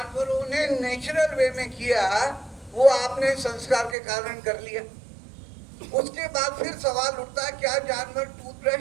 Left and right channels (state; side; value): drops out; left; at 4.0 s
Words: ने नेचुरल वे में किया वो आपने संस्कार के कारण कर लिया। उसके बाद फिर सवाल उठता है, क्या जानवर